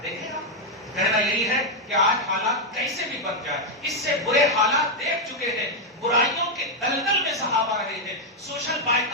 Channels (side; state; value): both; normal; correlation 0.00